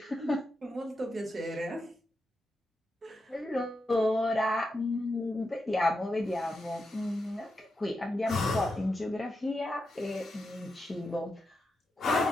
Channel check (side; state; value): both; normal; correlation 0.87